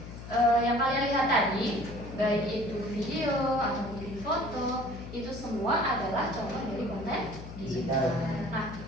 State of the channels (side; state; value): left; noise; hum, 12 dB below the sound